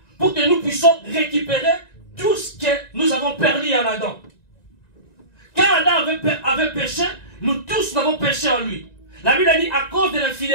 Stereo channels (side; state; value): right; late; 1.9 ms